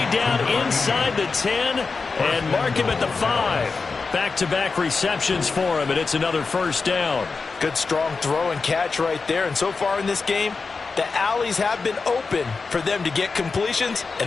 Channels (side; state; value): right; quieter; 4.5 dB